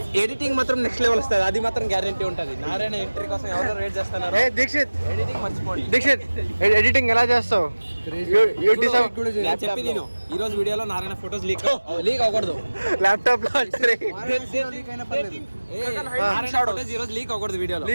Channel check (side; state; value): both; inverted; correlation -1.00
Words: ఎడిటింగ్ మాత్రం నెక్స్ట్ లెవెల్ వస్తుంది అది మాత్రం గ్యారంటీ ఉంటుంది. నారాయణ ఎంట్రీ కోసం ఎవరు వెయిట్ చేస్తున్నారు. దీక్షిత్ ఎడిటింగ్ మర్చిపోండి. దీక్షిత్ ఎడిటింగ్ ఎలా చేస్తావు చెప్పి నేను ఈ రోజు వీడియోలో నారాయణ ఫోటోస్ లీక్ అవ్వకూడదు. ల్యాప్టాప్ లో ఫోటోస్ ఈ రోజు లీక్ అవ్వకూడదు వీడియోలో.